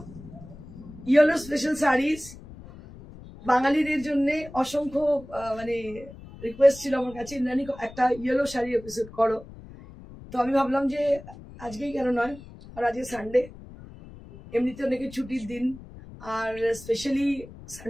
Yellow special sarees. বাঙালিদের জন্য অসংখ্য মানে request ছিল আমার কাছে ইন্দ্রাণী একটা yellow sari episode করো। তো আমি ভাবলাম যে আজকেই কেন নয়, আর আজকে সানডে, এমনিতে অনেকে ছুটির দিন, আর স্পেশালি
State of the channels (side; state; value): left; noise; rumble, 17 dB below the sound